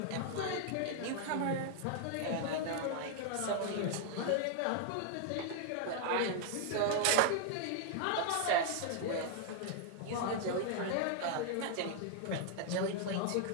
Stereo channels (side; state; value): both; different; correlation 0.00